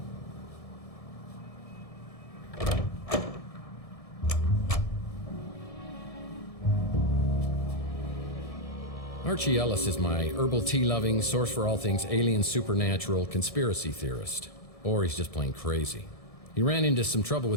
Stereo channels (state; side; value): late; right; 1.6 ms